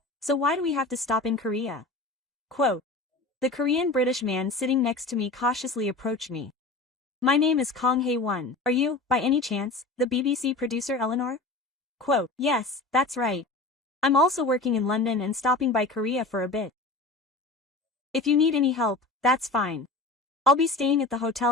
so why do we have to stop in Korea? Quote. The Korean-British man sitting next to me cautiously approached me. My name is Kong Hae-won. Are you, by any chance, the BBC producer Eleanor? Quote. Yes, that's right. I'm also working in London and stopping by Korea for a bit. If you need any help, that's fine. I'll be staying at the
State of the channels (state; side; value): quieter; right; 3.2 dB